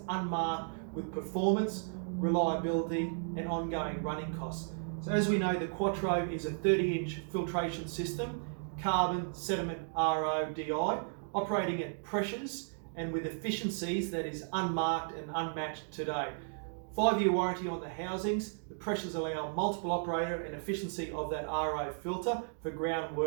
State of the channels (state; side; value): silent; left; digital silence